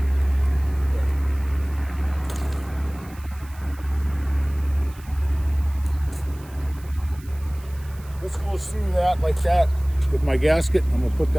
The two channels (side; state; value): right; noise; hiss, 24 dB below the sound